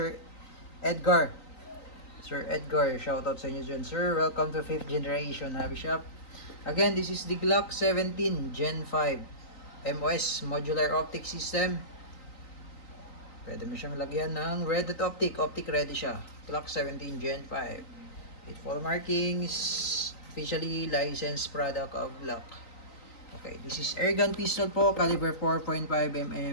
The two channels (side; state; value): right; late; 3.9 ms